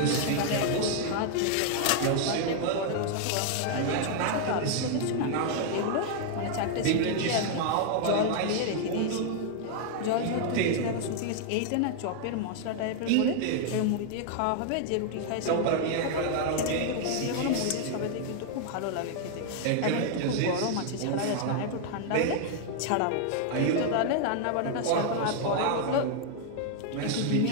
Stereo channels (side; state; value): both; different; correlation 0.00